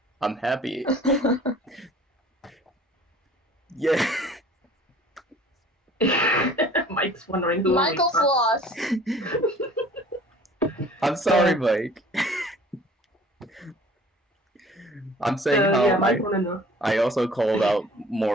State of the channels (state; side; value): normal; both; correlation 0.50